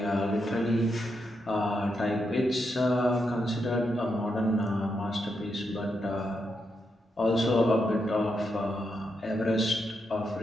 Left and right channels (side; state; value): both; normal; correlation 0.83